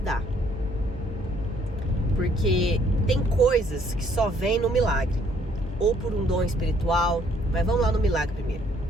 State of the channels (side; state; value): both; normal; correlation 0.64